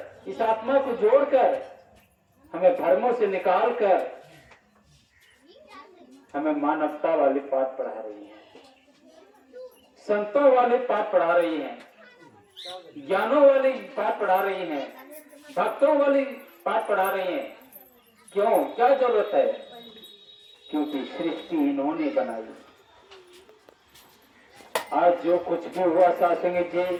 इस आत्मा को जोड़कर हमें धर्मों से निकालकर हमें मानवता वाले पाठ पढ़ा रही है, संतों वाले पाठ पढ़ा रही हैं, ज्ञानों वाली पाठ पढ़ा रही हैं, भक्तों वाली पाठ पढ़ा रही हैं। क्यों, क्या जरूरत है? क्योंकि सृष्टि इन्होंने बनाई। आज जो कुछ भी हुआ सासंग जी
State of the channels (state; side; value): identical; both; correlation 1.00